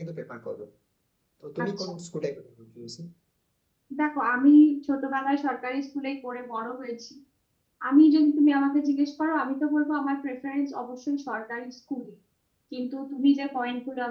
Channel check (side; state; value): both; identical; correlation 1.00